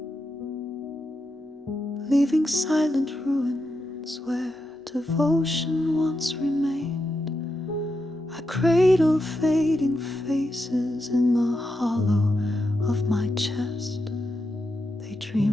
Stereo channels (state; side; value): normal; both; correlation 0.86